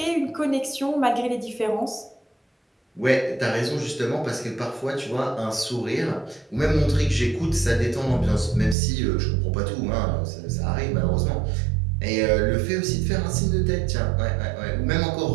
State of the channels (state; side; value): drops out; left; at 8.8 s